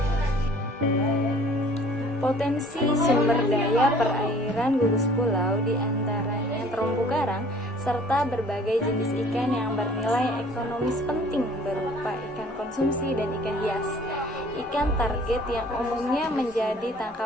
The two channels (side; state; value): both; normal; correlation 0.53